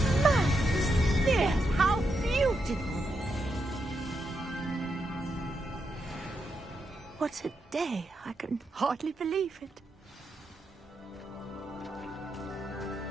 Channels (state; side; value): normal; both; correlation 0.83